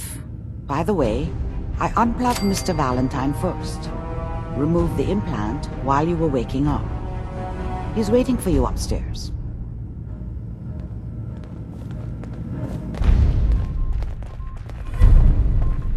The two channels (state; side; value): identical; both; correlation 1.00